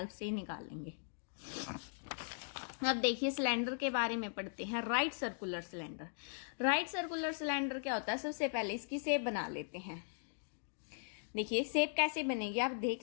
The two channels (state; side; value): silent; right; digital silence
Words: से निकालेंगे। अब देखिए सिलेंडर के बारे में पढ़ते हैं, right circular cylinder. Right circular cylinder क्या होता है, सबसे पहले इसकी शेप बना लेते हैं। देखिए शेप कैसे बनेगी आप